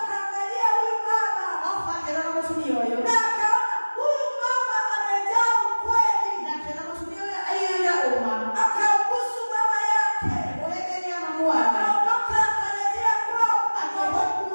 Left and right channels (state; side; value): inverted; both; correlation -1.00